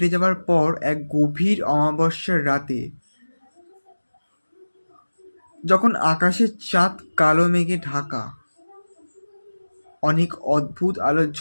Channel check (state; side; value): inverted; both; correlation -1.00